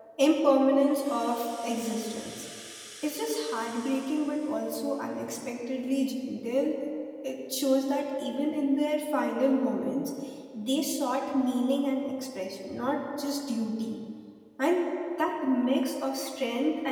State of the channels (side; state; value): both; identical; correlation 1.00